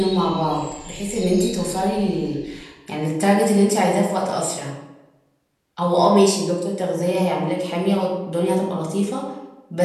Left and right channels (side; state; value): both; identical; correlation 1.00